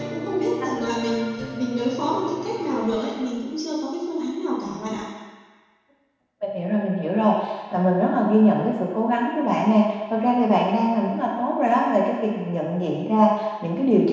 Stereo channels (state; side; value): identical; both; correlation 1.00